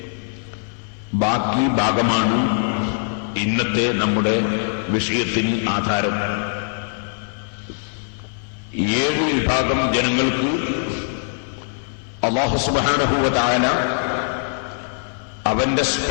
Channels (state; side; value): silent; right; 57 dB below the other